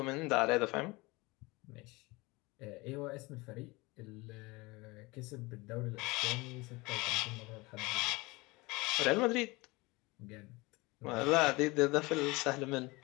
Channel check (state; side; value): quieter; right; 23.5 dB